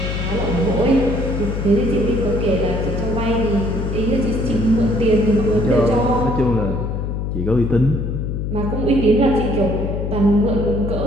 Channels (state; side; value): noise; left; hum, 3 dB below the sound